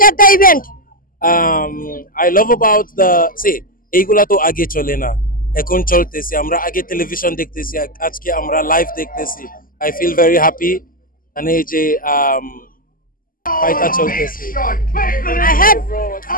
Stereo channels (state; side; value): late; right; 0.41 ms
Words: at the event? I love about the এইগুলা তো আগে চলে না, এখন চলতেছে। আমরা আগে টেলিভিশন দেখতেছি, আজকে আমরা লাইভ দেখতেছি। I feel very happy and এই যে ফাইটা চলতেছে।